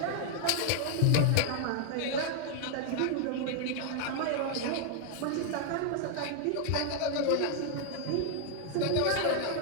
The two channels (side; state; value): both; different; correlation 0.00